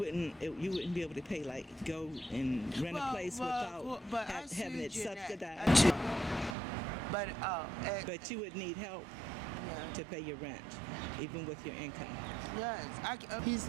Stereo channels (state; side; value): drops out; left; at 6.6 s